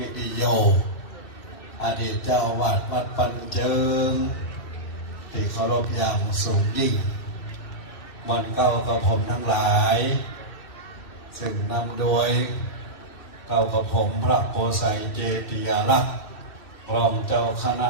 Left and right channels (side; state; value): right; late; 2.6 ms